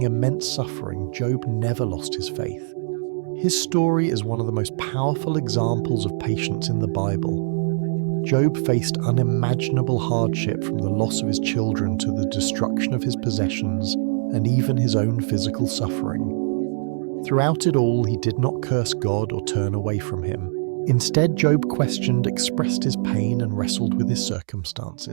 immense suffering, Job never lost his faith. His story is one of the most powerful examples of patience in the Bible. Job faced unimaginable hardship, from the loss of his children to the destruction of his possessions, and even his own physical suffering. Throughout it all, he did not curse God or turn away from Him. Instead, Job questioned, expressed his pain, and wrestled with his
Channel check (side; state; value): left; silent; digital silence